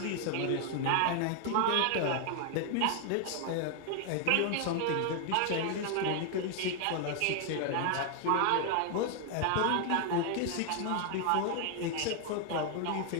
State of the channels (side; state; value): both; different; correlation 0.00